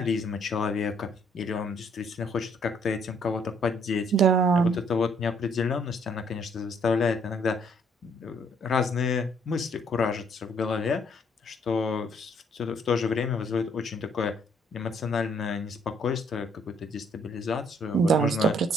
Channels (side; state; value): both; normal; correlation 0.66